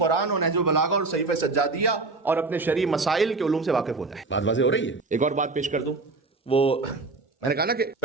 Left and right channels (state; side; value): quieter; left; 3.7 dB